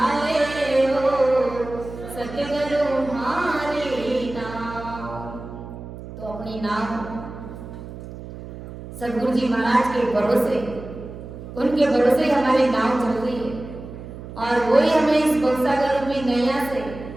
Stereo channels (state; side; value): noise; right; hum, 12 dB below the sound